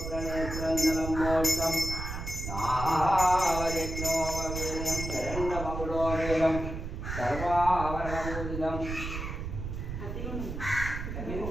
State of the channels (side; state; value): right; noise; rumble, 6 dB below the sound